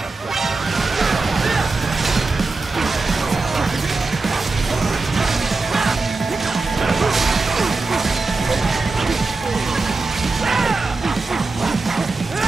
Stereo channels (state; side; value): quieter; left; 3.7 dB